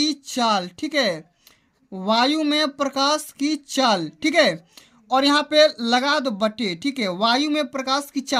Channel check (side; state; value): both; identical; correlation 1.00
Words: चाल। ठीक है, वायु में प्रकाश की चाल। ठीक है, और यहाँ पे लगा दो बटे। ठीक है, वायु में प्रकाश की